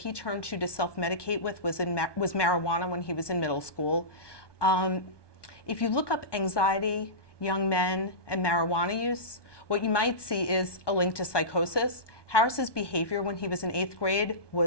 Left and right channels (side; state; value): right; late; 1.2 ms